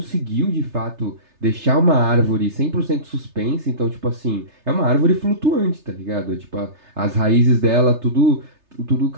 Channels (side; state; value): left; late; 3.3 ms